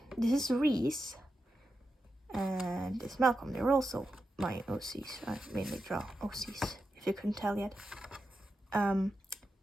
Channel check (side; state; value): both; normal; correlation 0.89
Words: this is Reese and this is Malcolm. They're also my OCs. I mainly draw OCs, if you couldn't tell yet.